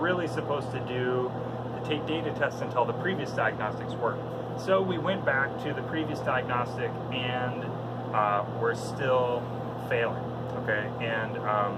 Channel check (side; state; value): both; identical; correlation 1.00